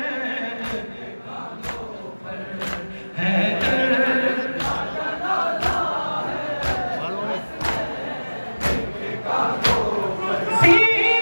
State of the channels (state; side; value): inverted; both; correlation -1.00